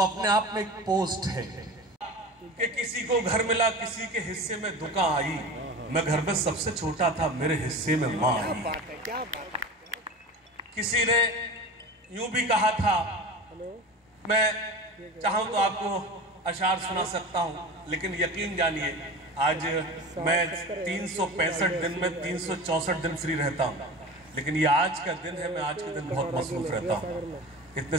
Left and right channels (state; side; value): normal; both; correlation 0.32